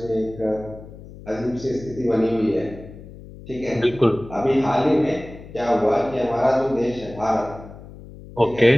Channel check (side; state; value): left; noise; hum, 17 dB below the sound